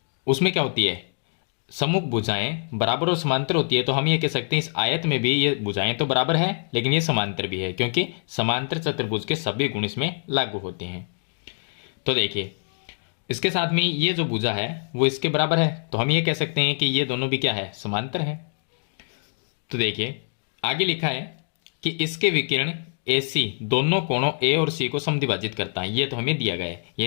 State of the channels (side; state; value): right; silent; digital silence